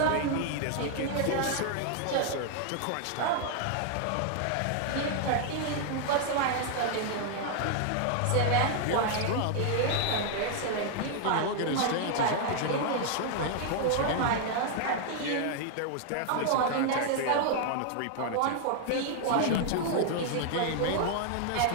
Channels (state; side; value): different; both; correlation 0.00